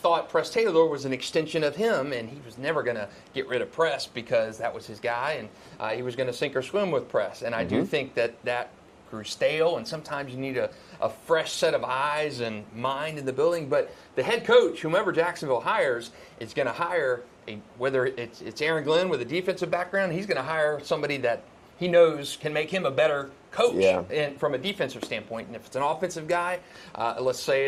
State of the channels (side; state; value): both; identical; correlation 1.00